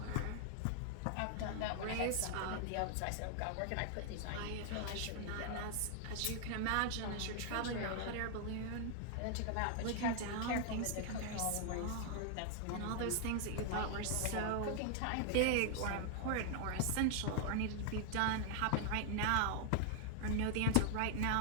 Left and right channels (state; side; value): different; both; correlation 0.00